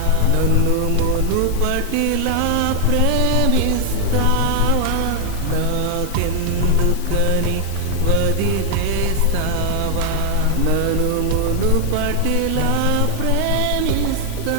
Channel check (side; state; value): both; different; correlation 0.00